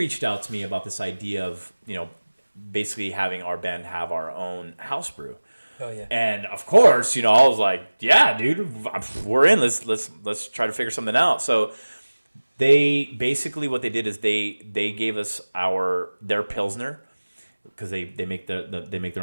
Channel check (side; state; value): both; inverted; correlation -1.00